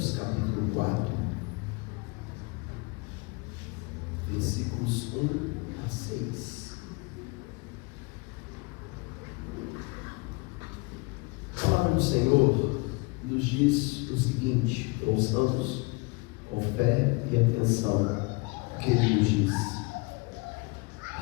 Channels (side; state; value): right; quieter; 28.4 dB